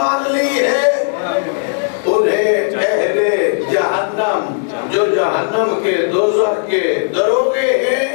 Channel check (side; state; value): right; silent; digital silence